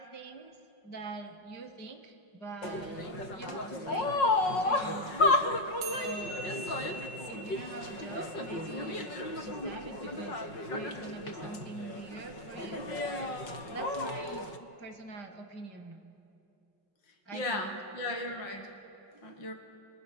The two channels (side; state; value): right; late; 5.5 ms